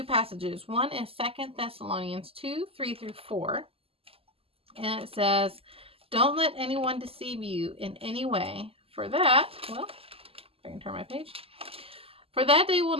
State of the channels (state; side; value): late; left; 0.28 ms